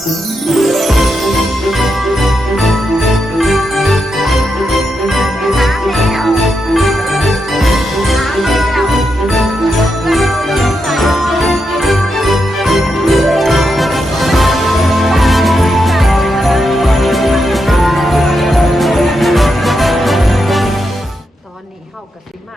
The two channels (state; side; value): normal; both; correlation 0.84